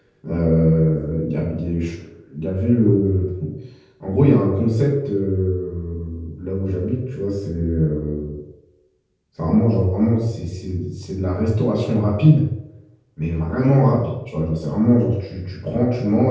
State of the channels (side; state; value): both; identical; correlation 1.00